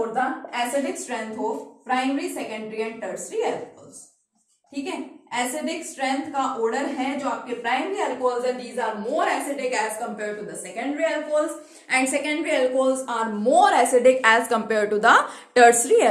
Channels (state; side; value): identical; both; correlation 1.00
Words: the acidic strength of primary, secondary and tertiary alcohols, ठीक है। एसिडिक स्ट्रेंथ का ऑर्डर है जो आपके प्राइमरी अल्कोहल्स है, these are more acidic as compare to the secondary alcohols, and secondary alcohols are more acidic as compare to the tertiary